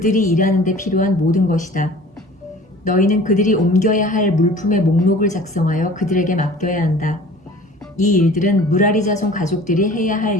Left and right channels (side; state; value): both; normal; correlation 0.45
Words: 일하는 데 필요한 모든 것이다. 너희는 그들이 옮겨야 할 물품의 목록을 작성하여 그들에게 맡겨야 한다. 이 일들은 무라리 자손 가족들이 해야 할